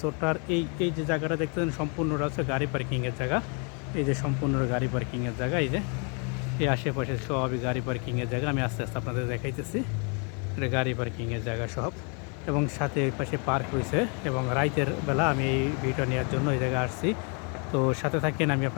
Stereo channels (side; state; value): right; quieter; 36.8 dB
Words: এই যে জায়গাটা দেখতেছেন সম্পূর্ণটা হচ্ছে গাড়ি পার্কিংয়ের জায়গা। এই যে সম্পূর্ণ গাড়ি পার্কিংয়ের জায়গা, এই যে এই আশেপাশে সবই গাড়ি পার্কিংয়ের জায়গা। আমি আস্তে আস্তে আপনাদের দেখাইতেছি। এটা গাড়ি পার্কিংয়ের জায়গা সব, এবং সাথে এই পাশে পার্ক রয়েছে। এবং রাইতের বেলা আমি এই ভিডিও নেওয়ার জন্য এই জায়গায় আসছি। তো সাথে থাকেন, আমি